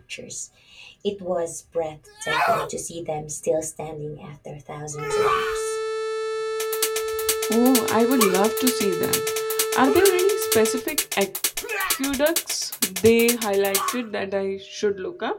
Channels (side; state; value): both; identical; correlation 1.00